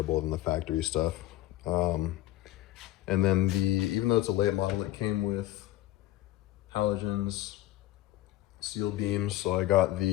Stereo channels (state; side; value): quieter; right; 15.2 dB